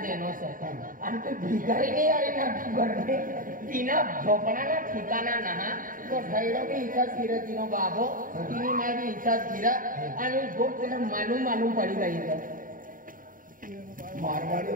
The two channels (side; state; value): left; late; 0.40 ms